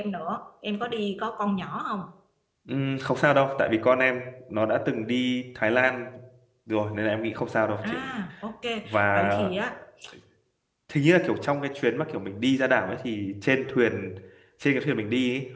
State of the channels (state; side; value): identical; both; correlation 1.00